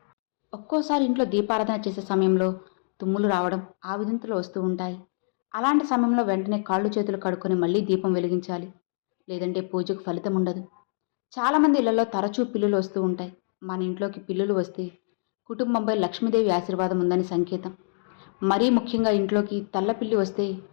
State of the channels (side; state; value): right; silent; digital silence